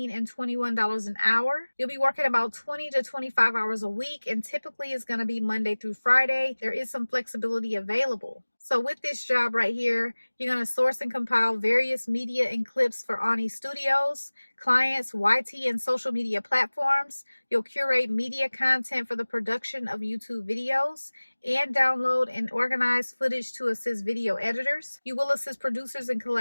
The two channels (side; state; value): both; inverted; correlation -1.00